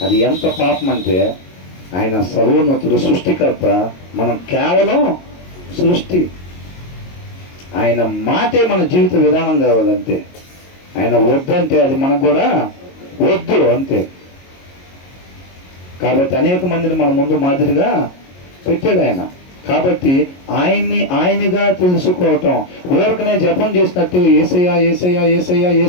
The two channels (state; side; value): late; right; 22 ms